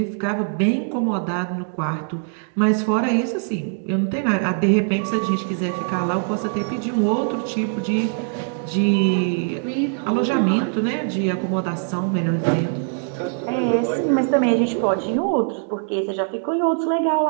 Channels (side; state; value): left; silent; 64 dB below the other